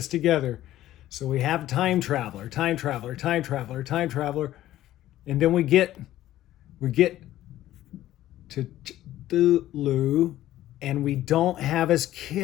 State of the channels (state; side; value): quieter; right; 13.9 dB